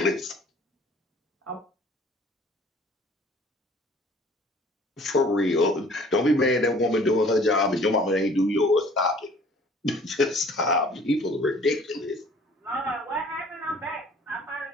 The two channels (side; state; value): both; normal; correlation 0.52